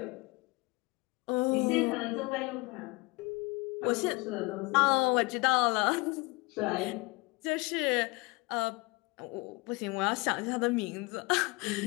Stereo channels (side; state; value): right; quieter; 25.9 dB